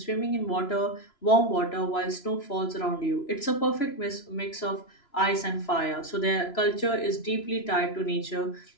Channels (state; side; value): late; right; 3.0 ms